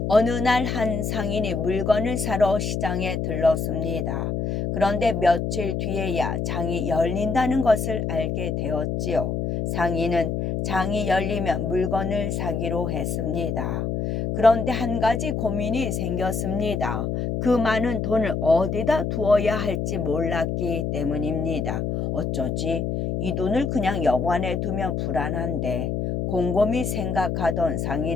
어느 날 한 상인이 물건을 사러 시장에 들렀습니다. 그런데 며칠 뒤에야 장이 열린다는 것을 알게 되었지요. 상인은 장이 열리면 물건을 사기로 했습니다. 그런데 한 가지 고민이 생겼습니다. 그 많은 돈을 어디다 두어야 할지 몰랐기 때문입니다. 어쩌지? 이 돈을 그냥 여관에 두면 불안한데. 곰곰이 생각하던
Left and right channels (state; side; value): noise; left; hum, 1 dB below the sound